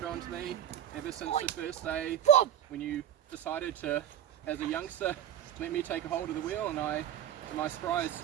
on to me ever since the first day when you decided to, as a youngster, let me take a hold of the wheel, and I, to my surprise,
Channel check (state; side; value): quieter; left; 10.9 dB